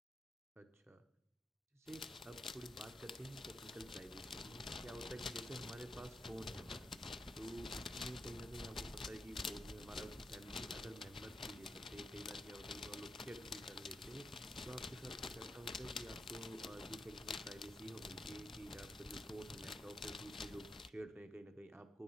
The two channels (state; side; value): normal; both; correlation 0.83